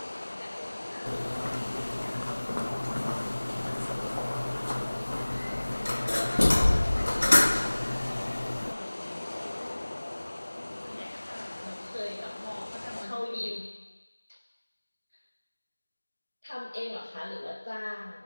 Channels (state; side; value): inverted; both; correlation -1.00